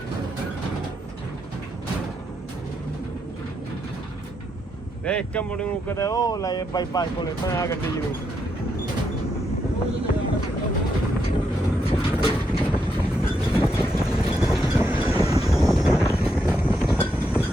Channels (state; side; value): normal; both; correlation 0.80